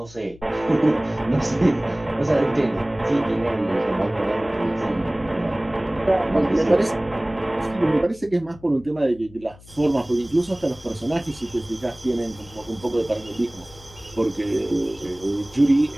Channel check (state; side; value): noise; left; hum, 22 dB below the sound